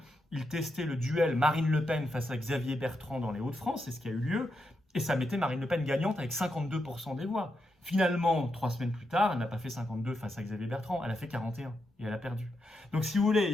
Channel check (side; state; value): both; normal; correlation 0.84